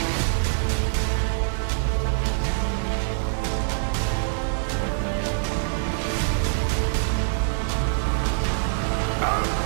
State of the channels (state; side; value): silent; left; digital silence